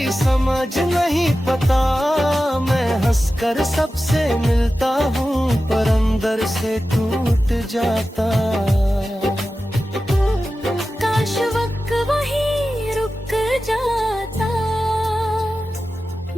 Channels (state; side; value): normal; both; correlation 0.93